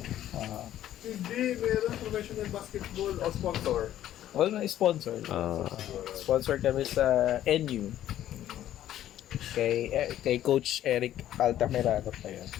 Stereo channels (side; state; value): right; quieter; 12.2 dB